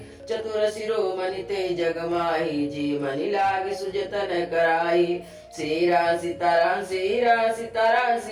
चतुर शिरोमणि ते जग माही, जी मनि लाग सुजतन कराई। श्री राम सीताराम, श्री राम सीताराम,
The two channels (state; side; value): identical; both; correlation 1.00